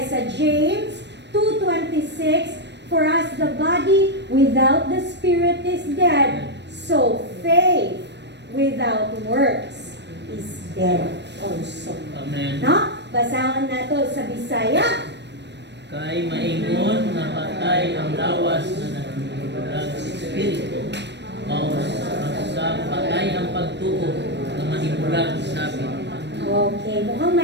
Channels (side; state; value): left; late; 0.50 ms